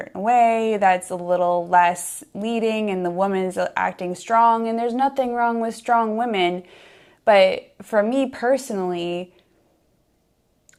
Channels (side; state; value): both; identical; correlation 1.00